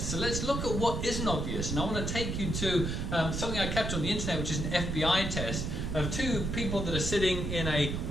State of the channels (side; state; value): right; noise; rumble, 2 dB below the sound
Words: So let's look at what isn't obvious. And I want to take you to something I kept on the internet, which is an FBI test of two people that are sitting in a